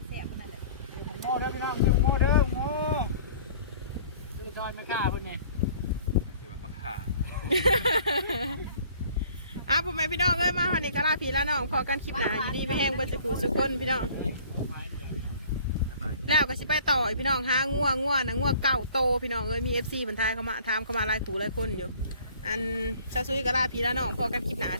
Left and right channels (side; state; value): both; inverted; correlation -0.52